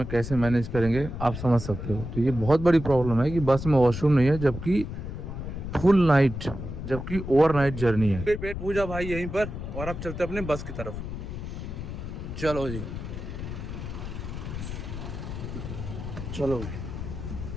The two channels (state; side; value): noise; left; rumble, 7 dB below the sound